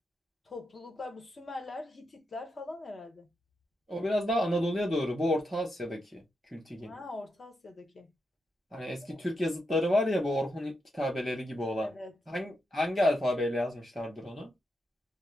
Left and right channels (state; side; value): normal; both; correlation 0.85